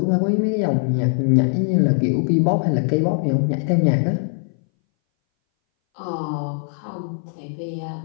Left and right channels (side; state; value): right; silent; 61 dB below the other